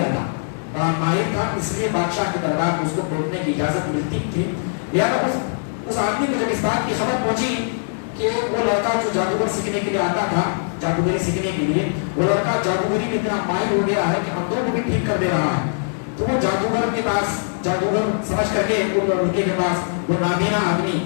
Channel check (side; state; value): right; silent; digital silence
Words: تھا, بڑا ماہر تھا, اس لیے بادشاہ کے دربار میں اس کو بیٹھنے کی اجازت ملتی تھی. لہٰذا اس آدمی کو جب اس بات کی خبر پہنچی کہ وہ لڑکا جو جادوگر سیکھنے کے لیے آتا تھا, جادوگری سیکھنے کے لیے, وہ لڑکا جادوگری میں اتنا ماہر ہو گیا ہے کہ اندھوں کو بھی ٹھیک کر دے رہا ہے, تو وہ جادوگر کے پاس, جادوگر سمجھ کر کے وہ لڑکے کے پاس, وہ نابینا آدمی